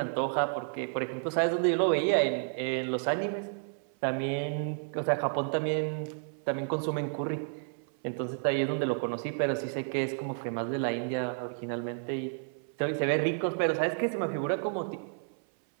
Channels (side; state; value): left; silent; 57 dB below the other